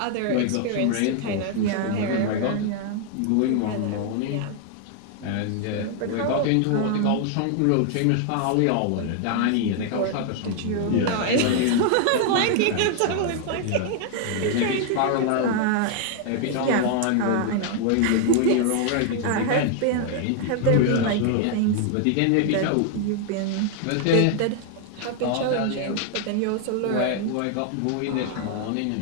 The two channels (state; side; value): different; both; correlation 0.00